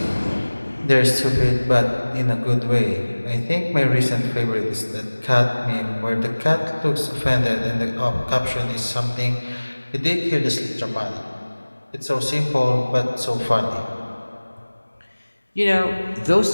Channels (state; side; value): inverted; both; correlation -1.00